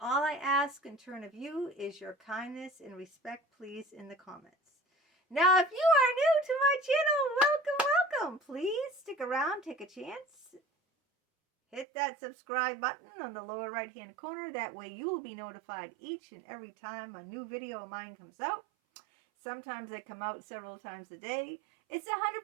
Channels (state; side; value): drops out; left; at 11.9 s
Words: all I ask in turn of you is your kindness and respect, please, in the comments. Now, if you are new to my channel, welcome. Please stick around, take a chance. Hit that subscribe button on the lower right hand corner. That way you will be notified each and every time a new video of mine comes out. Sometimes they come out several times a day. It's